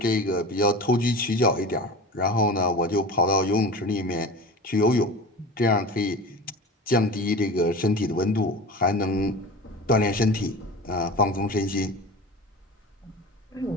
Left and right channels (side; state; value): both; normal; correlation 0.32